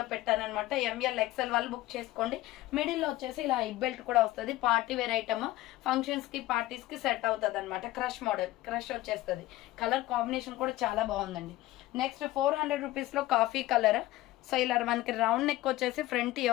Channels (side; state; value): right; quieter; 16.9 dB